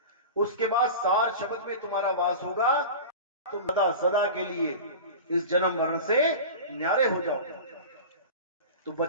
उसके बाद सार शब्द में तुम्हारा वास होगा, तुम सदा सदा के लिए इस जन्म मरण से न्यारे हो जाओगे। तो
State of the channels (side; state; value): both; inverted; correlation -0.31